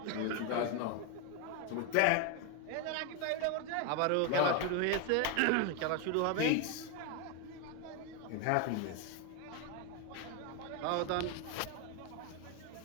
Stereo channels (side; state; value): both; different; correlation 0.01